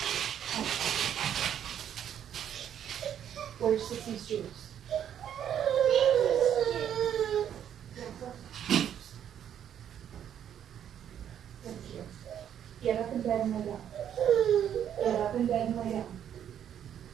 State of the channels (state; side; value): quieter; left; 9.6 dB